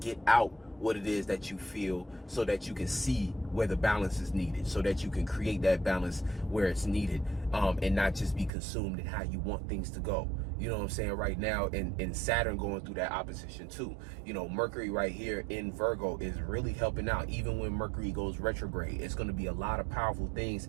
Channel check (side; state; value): left; drops out; at 8.5 s